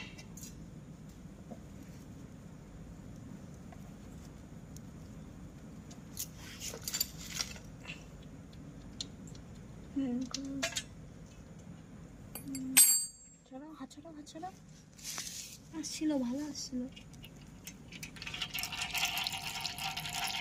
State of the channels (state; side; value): identical; both; correlation 1.00